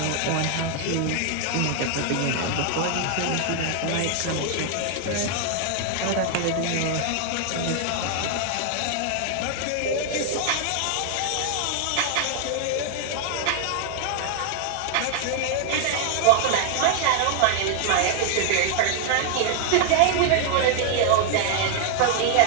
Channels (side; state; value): both; different; correlation 0.00